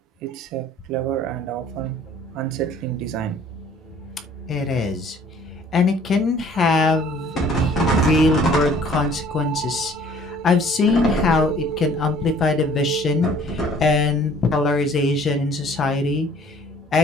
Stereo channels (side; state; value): both; normal; correlation 0.55